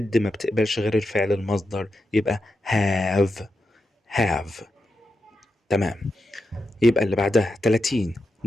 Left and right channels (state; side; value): normal; both; correlation 0.87